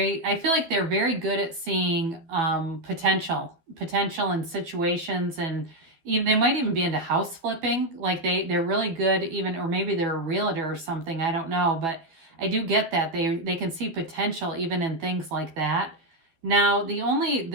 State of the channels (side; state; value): left; late; 12 ms